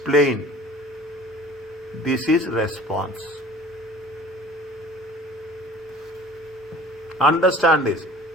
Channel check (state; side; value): normal; both; correlation 0.46